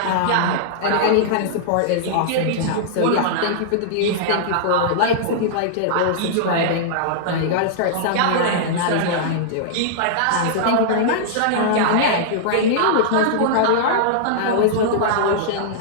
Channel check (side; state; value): both; different; correlation -0.02